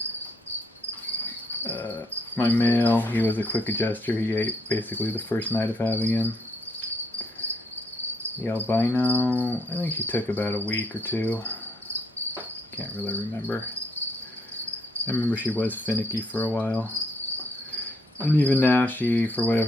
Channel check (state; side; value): normal; both; correlation 0.72